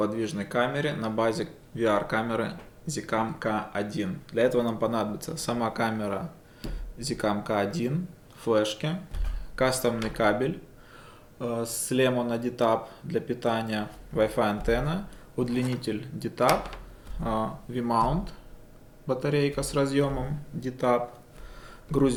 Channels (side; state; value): both; identical; correlation 1.00